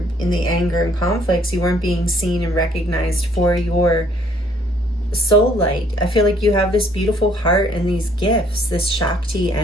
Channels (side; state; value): both; normal; correlation 0.63